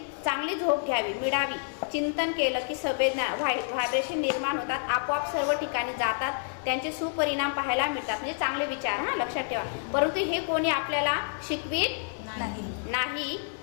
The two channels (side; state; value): right; silent; 59 dB below the other